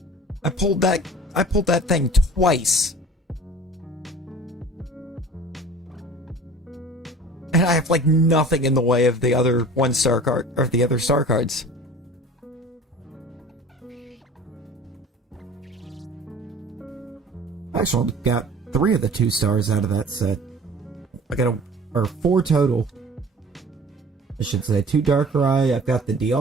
I pulled that thing twice. And I have like nothing in the way of the other 1-star card or the other star cards. I actually got 3 of the 2 stars out of that set. I got or 4 total. I should say 2 Darkrai. I've got the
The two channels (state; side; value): normal; both; correlation 0.44